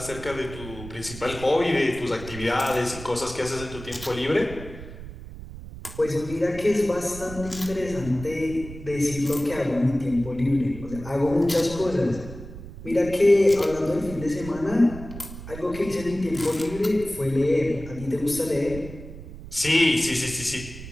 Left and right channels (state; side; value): noise; right; rumble, 13 dB below the sound